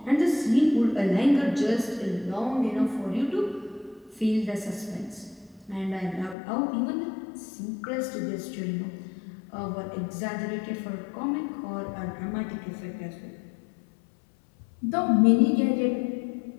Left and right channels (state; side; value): drops out; right; at 6.4 s